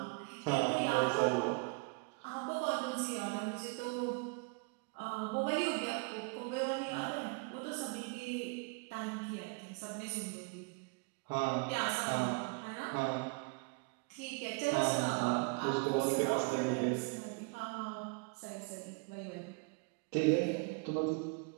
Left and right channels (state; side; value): quieter; left; 31.9 dB